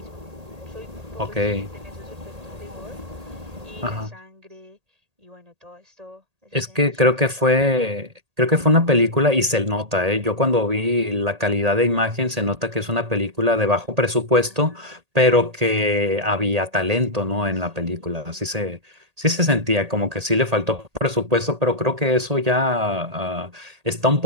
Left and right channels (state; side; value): late; left; 1.8 ms